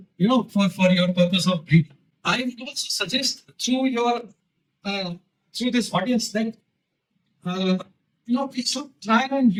for your purpose of breeding. I would also suggest through this audience that we should try and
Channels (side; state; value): both; identical; correlation 1.00